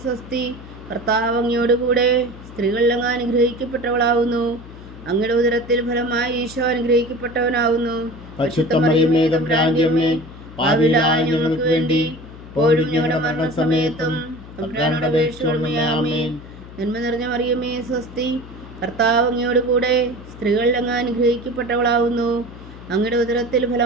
സ്വസ്തി, കർത്താവ് അങ്ങയോട് കൂടെ സ്ത്രീകളിൽ അങ്ങ് അനുഗ്രഹിക്കപ്പെട്ടവളാവുന്നു. അങ്ങയുടെ ഉദരത്തിൽ ഫലമായി ഈശോ അനുഗ്രഹിക്കപ്പെട്ടവനാവുന്നു. പരിശുദ്ധ മറിയമേ തമ്പുരാന്റെ അമ്മേ, പാപികളായ ഞങ്ങൾക്ക് വേണ്ടി ഇപ്പോഴും ഞങ്ങളുടെ മരണസമയത്തും തമ്പുരാനോട് അപേക്ഷിച്ചുകൊള്ളണമേ. ആമേൻ. നന്മ നിറഞ്ഞ മറിയമേ സ്വസ്തി, കർത്താവ് അങ്ങയോട് കൂടെ സ്ത്രീകളിൽ അങ്ങ് അനുഗ്രഹിക്കപ്പെട്ടവളാവുന്നു. അങ്ങയുടെ ഉദരത്തിൽ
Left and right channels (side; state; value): left; noise; hum, 16 dB below the sound